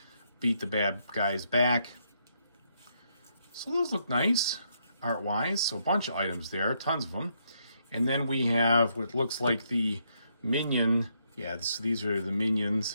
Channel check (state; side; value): inverted; both; correlation -0.76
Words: beat the bad guys back. So those look nice, art-wise. So a bunch of items there, tons of them. And then we have what looks like the minion. Yeah, so these are the minions